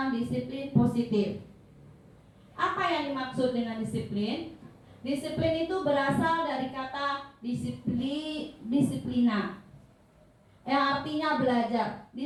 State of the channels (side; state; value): both; identical; correlation 1.00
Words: disiplin positif. Apa yang dimaksud dengan disiplin? Disiplin itu berasal dari kata disiplina, yang artinya belajar.